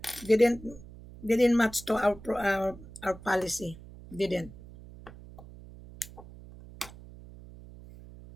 Didn't didn't match to our policy. Didn't.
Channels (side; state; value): right; noise; hum, 18 dB below the sound